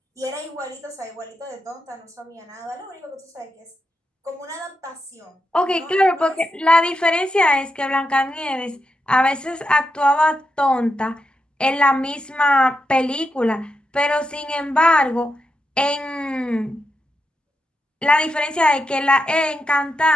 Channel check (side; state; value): both; normal; correlation 0.86